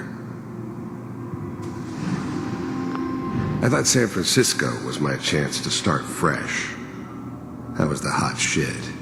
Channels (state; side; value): identical; both; correlation 1.00